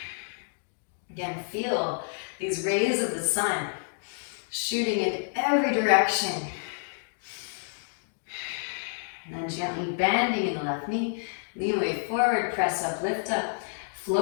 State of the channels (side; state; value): right; silent; digital silence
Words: Again, feel these rays of the sun shooting in every direction. And then gently bending in the left knee. Lean weight forward, press up, lift up.